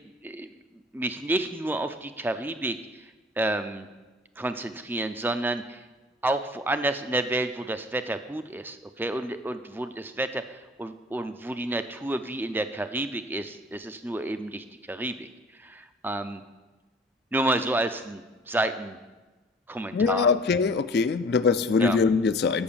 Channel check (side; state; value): both; normal; correlation 0.48